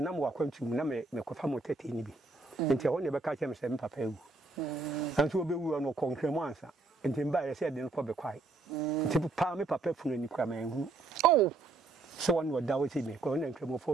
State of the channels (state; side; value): quieter; left; 3.6 dB